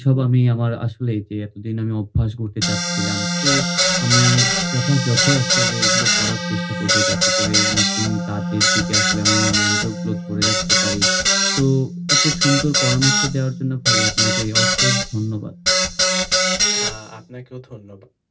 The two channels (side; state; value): both; identical; correlation 1.00